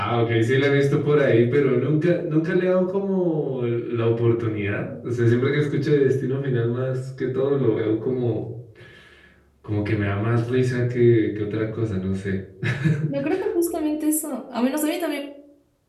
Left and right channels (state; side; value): identical; both; correlation 1.00